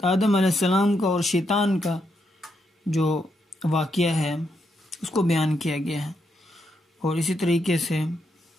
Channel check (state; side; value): normal; both; correlation 0.80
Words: آدم علیہ السلام کا اور شیطان کا جو واقعہ ہے اس کو بیان کیا گیا ہے، اور اسی طریقے سے